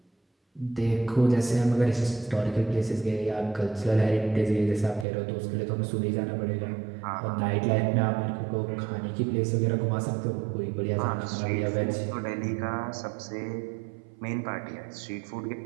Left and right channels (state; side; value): drops out; left; at 5.1 s